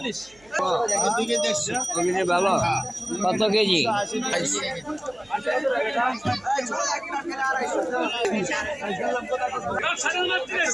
ভালো কত কেজি?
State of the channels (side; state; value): right; noise; hum, 29 dB below the sound